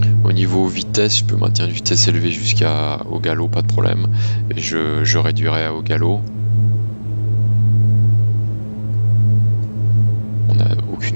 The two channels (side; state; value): both; inverted; correlation -1.00